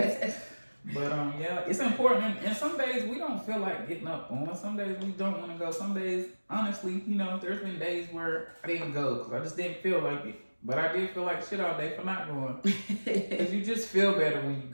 ass. But yeah, it's important. And some days we don't feel like getting up on. Some days we don't want to go. Some days, honestly, there's been days where I didn't go because I just didn't feel like it. But I did feel like shit all day for not going. Because you just feel better when you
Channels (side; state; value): both; inverted; correlation -1.00